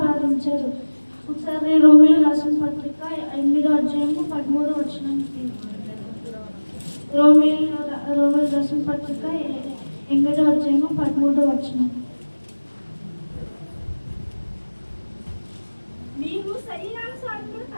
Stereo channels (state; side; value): inverted; both; correlation -1.00